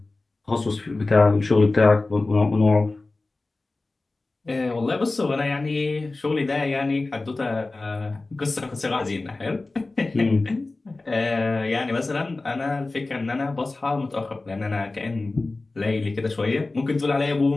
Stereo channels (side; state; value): right; quieter; 3.3 dB